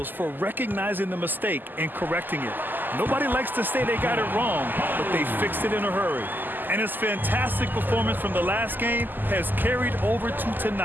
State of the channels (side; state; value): left; late; 0.089 ms